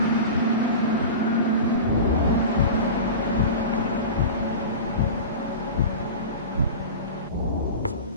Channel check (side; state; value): both; inverted; correlation -0.31